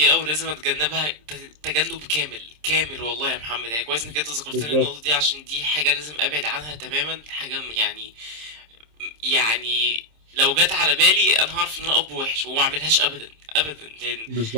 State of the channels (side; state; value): left; late; 26 ms